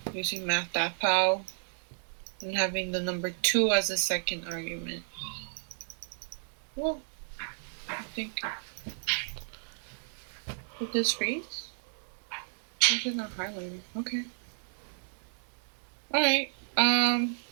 Using math.pow and having the number 2 as a second argument. Well, I think. Did this freeze? Why is it not highlighted? Okay. Alright.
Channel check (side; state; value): left; silent; 56 dB below the other